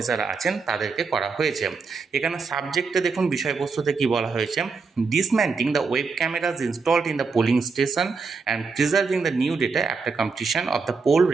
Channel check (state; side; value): quieter; left; 4.7 dB